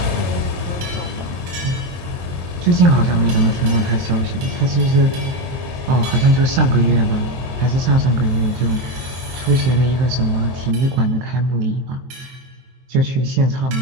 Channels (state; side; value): late; left; 23 ms